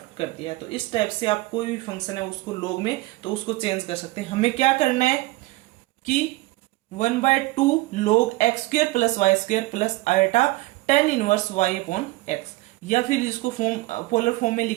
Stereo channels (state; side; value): quieter; left; 20.2 dB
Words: कर दिया है। तो इस टाइप से आप कोई भी फंक्शन है उसको log में तो उसको चेंज कर सकते हैं। हमें क्या करना है कि 1/2 log x square plus y square plus iota tan inverse y upon x, या फिर इसको फॉर्म पोलर फॉर्म में